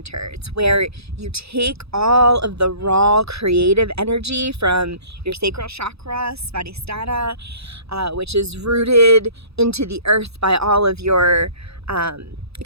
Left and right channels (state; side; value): late; left; 0.78 ms